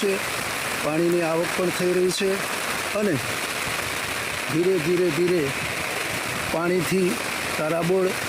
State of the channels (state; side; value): identical; both; correlation 1.00